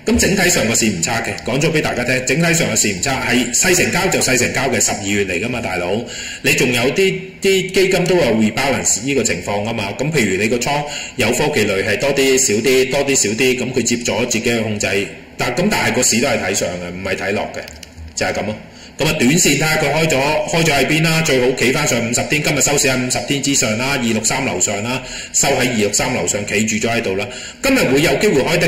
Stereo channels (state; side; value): identical; both; correlation 1.00